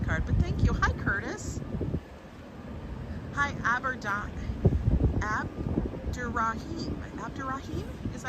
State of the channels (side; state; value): both; identical; correlation 1.00